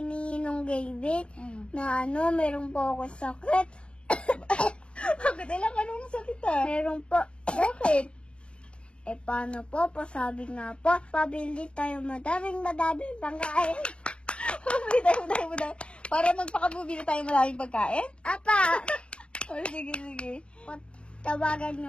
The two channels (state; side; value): late; right; 0.057 ms